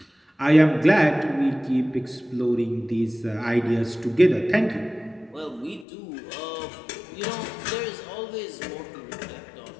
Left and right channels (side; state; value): right; drops out; at 5.9 s